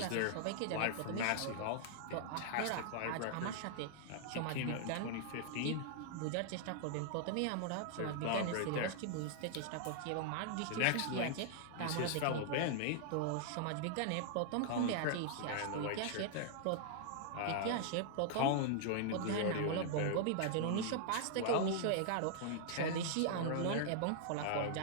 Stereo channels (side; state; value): both; different; correlation -0.01